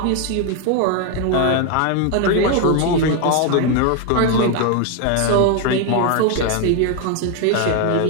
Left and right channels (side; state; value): both; different; correlation 0.01